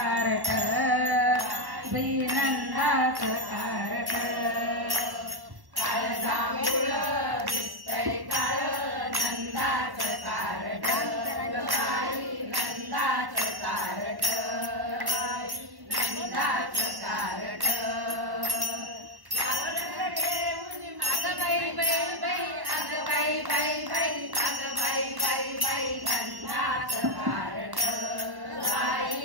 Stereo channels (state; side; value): late; left; 1.1 ms